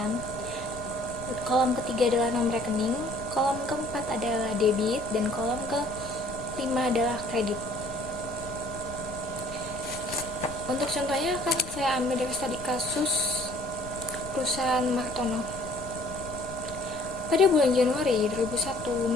kolom ketiga adalah nomor rekening, kolom keempat adalah debit, dan kolom kelima adalah kredit. Untuk contohnya akan saya ambil dari studi kasus perusahaan Martono. Pada bulan Januari 2001,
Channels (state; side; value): noise; left; rumble, 16 dB below the sound